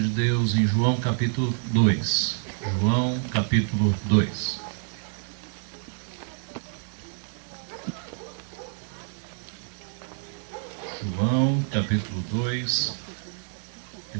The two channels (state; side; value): silent; left; 60 dB below the other